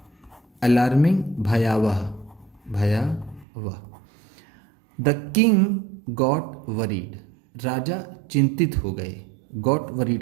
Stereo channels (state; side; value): drops out; left; at 3.5 s